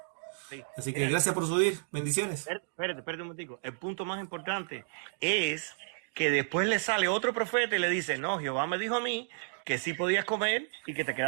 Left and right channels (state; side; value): silent; left; digital silence